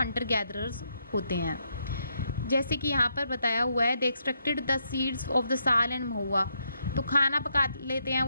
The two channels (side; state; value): both; inverted; correlation -0.79